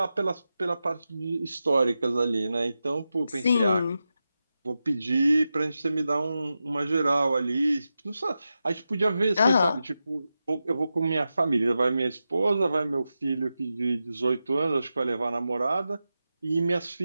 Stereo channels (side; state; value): both; inverted; correlation -0.91